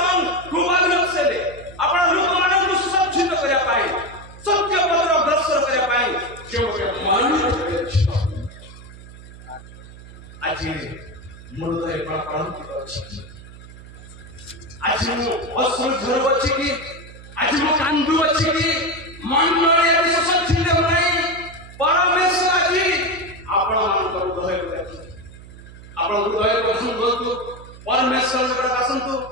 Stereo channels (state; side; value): noise; right; hum, 18 dB below the sound